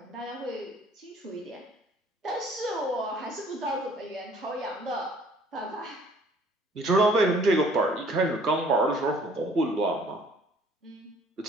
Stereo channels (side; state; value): both; normal; correlation 0.57